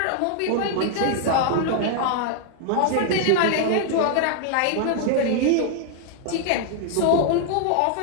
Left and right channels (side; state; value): both; different; correlation 0.00